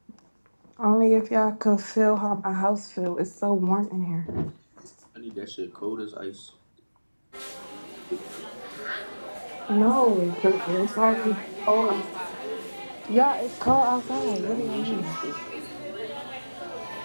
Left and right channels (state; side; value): inverted; both; correlation -1.00